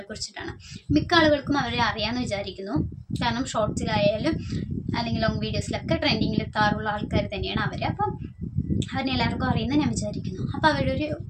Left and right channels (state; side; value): identical; both; correlation 1.00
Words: കുറിച്ചിട്ടാണ്. മിക്ക ആളുകൾക്കും അവരെ അറിയാമെന്ന് വിചാരിക്കുന്നു. കാരണം ഷോർട്സിലായാലും അല്ലെങ്കിൽ ലോങ് വീഡിയോസിലൊക്കെ ട്രെൻഡിങ്ങിൽ എത്താറുള്ള ആൾക്കാർ തന്നെയാണ് അവർ. അപ്പം അവരെ എല്ലാവർക്കും അറിയുന്ന ഞാൻ വിചാരിക്കുന്നു. അപ്പോൾ അവരുടെ ഒരു